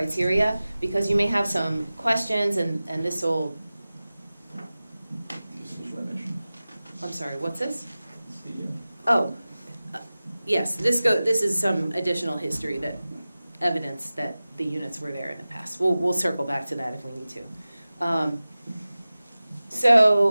because you may have some questions, and this will... I'm sorry, what's this? Oh, yes, this is some additional history, that evidence that the units were there in the past. We'll circle back to that if we need to.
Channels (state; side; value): inverted; both; correlation -0.96